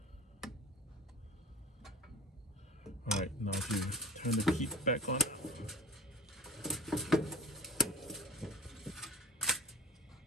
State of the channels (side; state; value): both; normal; correlation 0.38